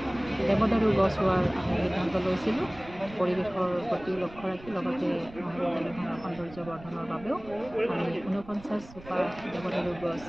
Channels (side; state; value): right; noise; rumble, 18 dB below the sound